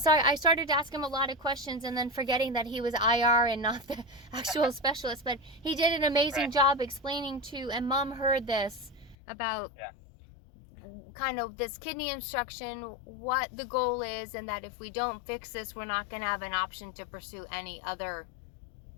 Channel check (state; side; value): drops out; right; at 9.2 s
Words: I started to ask him a lot of questions and then forgetting that he was IR and not the actual specialist. But he did an amazing job explaining to, and Mom heard this about kind of this kidney instruction, what the goal is, and that if we don't fix this, we're not going to have an option to pursue any other